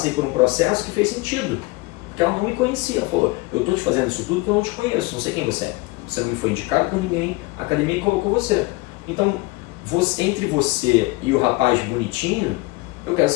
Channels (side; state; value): right; quieter; 22.7 dB